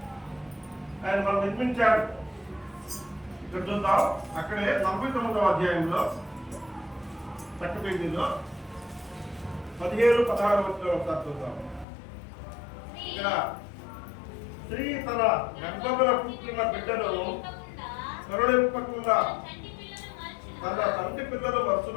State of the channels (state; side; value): drops out; right; at 11.9 s